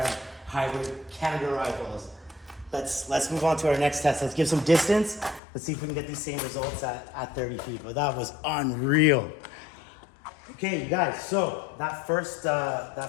hybrid Canada RIOT balls. Let's move on to our next test. Let's give some distance. Let's see if we can get these same results at 30 feet. But that was unreal. Okay, you guys, so that first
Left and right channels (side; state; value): right; drops out; at 5.4 s